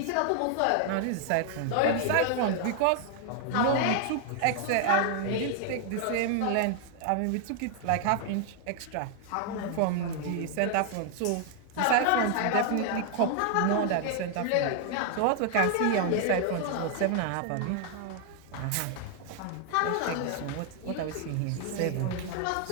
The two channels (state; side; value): different; both; correlation 0.00